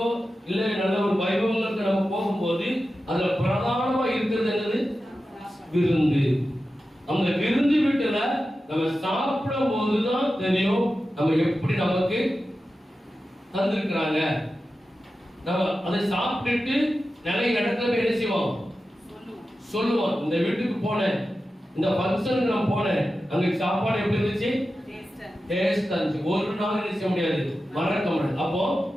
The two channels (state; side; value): normal; both; correlation 0.92